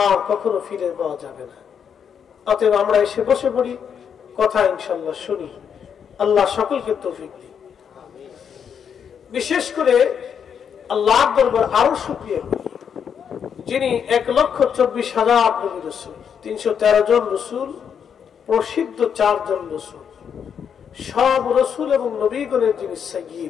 আর কখনো ফিরে পাওয়া যাবে না। অতএব আমরা এসে বসে পড়ি, কথা ইনশাল্লাহ শুনি। আল্লাহ সকলকে তৌফিক দিন। বিশেষ করে আল্লাহর দরবার আরো শুকরিয়া করি, যিনি 1,24,000 নবী রাসূল, 313 জন রাসূল, প্রসিদ্ধ 4 জন রাসূল, সব রাসূল এবং নবীগণের যিনি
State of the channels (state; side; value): quieter; right; 7.6 dB